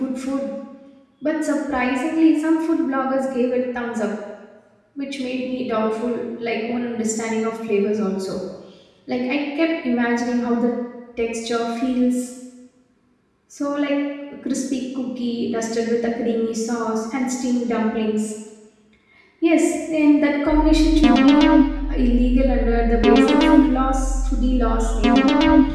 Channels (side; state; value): both; identical; correlation 1.00